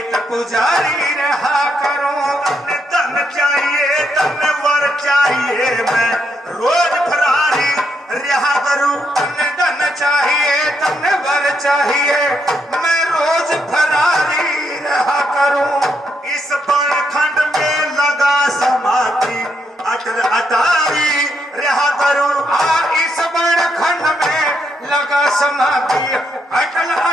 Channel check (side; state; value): both; normal; correlation 0.78